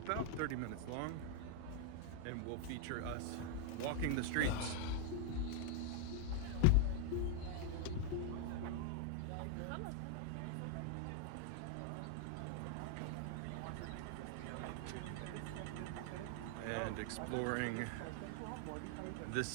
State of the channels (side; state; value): both; different; correlation 0.00